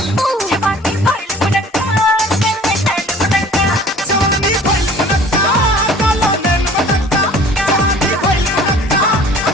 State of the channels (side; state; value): both; normal; correlation 0.49